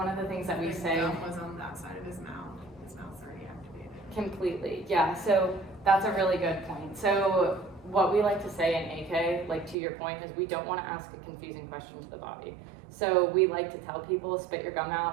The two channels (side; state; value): left; drops out; at 9.8 s